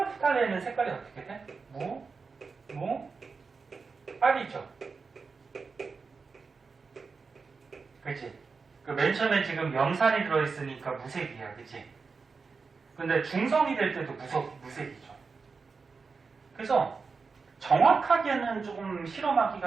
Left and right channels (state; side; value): quieter; left; 4.8 dB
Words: 색깔이 어떻게 돼? 빨이죠. 그치? 그 맨 처음에 지금 염산이 들어있으니까 무색이야. 그치? 근데 중성이 될 때도 무색이죠. 그래서 정확하게는 조금